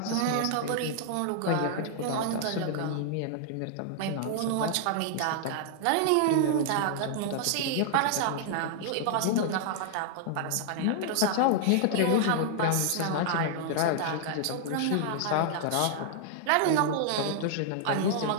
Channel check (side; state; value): both; different; correlation -0.01